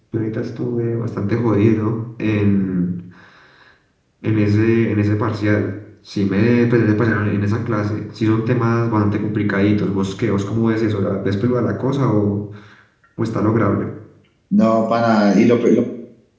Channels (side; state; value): both; identical; correlation 1.00